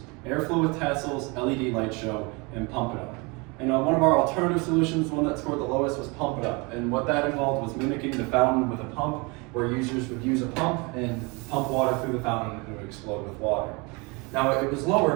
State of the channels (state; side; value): quieter; left; 28.3 dB